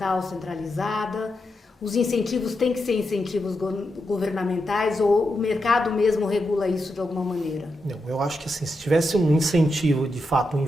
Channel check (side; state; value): both; normal; correlation 0.86